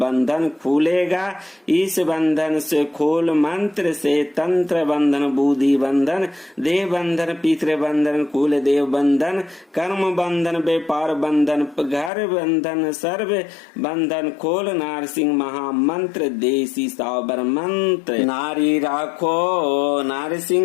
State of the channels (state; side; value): drops out; right; at 12.1 s